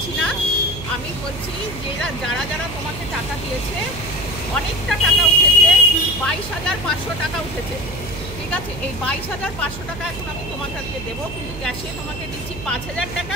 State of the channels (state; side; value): noise; right; hum, 11 dB below the sound